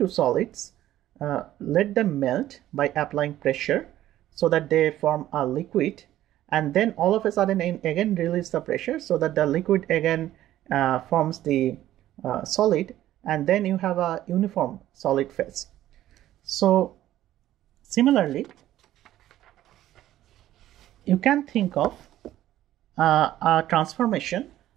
solids, let them melt by applying pressure so that they form a liquid, and then all of a sudden again release the pressure so that the liquid again forms the solid, and then you have a uniform solid phase. So similarly you can think of a transformation,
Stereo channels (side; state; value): left; quieter; 13.5 dB